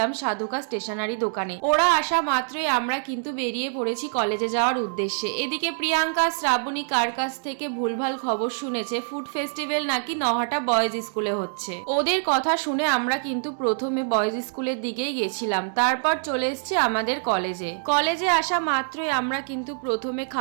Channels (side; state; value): left; silent; digital silence